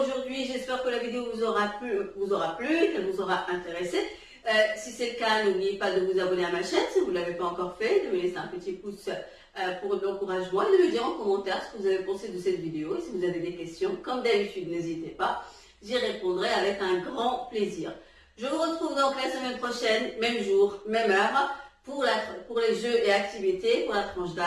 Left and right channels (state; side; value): identical; both; correlation 1.00